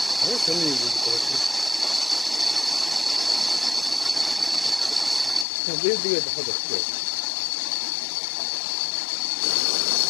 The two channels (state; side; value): drops out; right; at 5.5 s